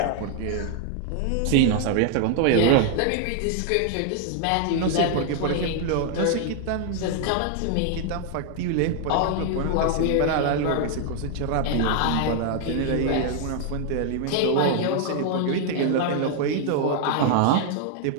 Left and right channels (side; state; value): both; different; correlation 0.00